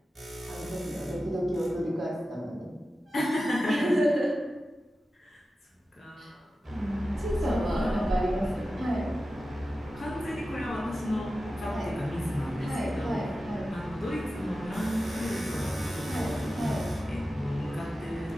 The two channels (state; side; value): normal; both; correlation 0.93